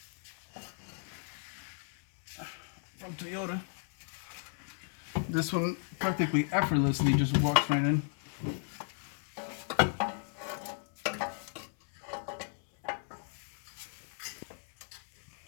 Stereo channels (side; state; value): right; silent; 55 dB below the other